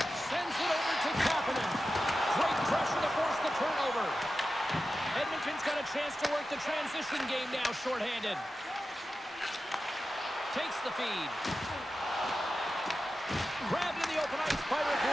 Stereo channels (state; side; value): normal; both; correlation 0.92